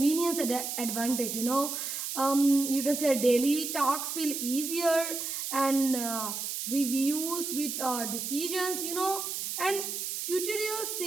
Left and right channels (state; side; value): noise; right; hiss, 4 dB below the sound